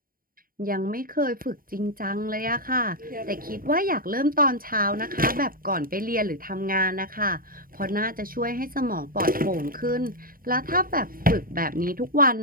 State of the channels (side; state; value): left; late; 0.41 ms